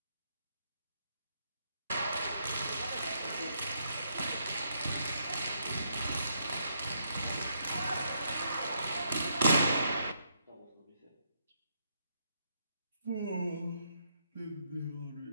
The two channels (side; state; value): both; inverted; correlation -0.76